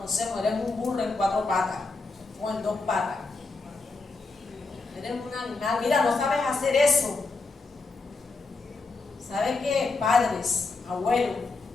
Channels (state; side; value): quieter; right; 3.8 dB